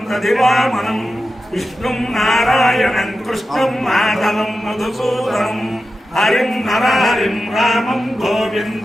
దధివామనం విష్ణుం నారాయణం కృష్ణం మాధవం మధుసూదనం హరిం నరహరిం రామం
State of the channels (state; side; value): normal; both; correlation 0.92